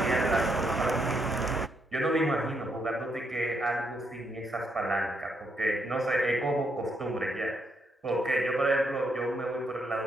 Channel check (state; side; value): normal; both; correlation 0.77